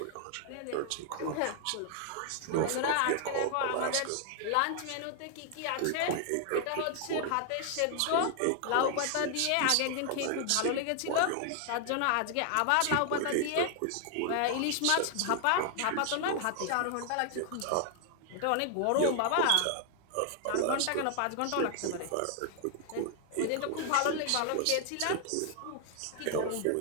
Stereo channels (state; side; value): different; both; correlation 0.00